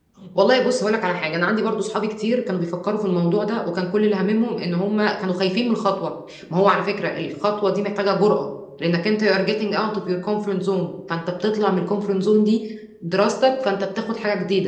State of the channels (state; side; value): identical; both; correlation 1.00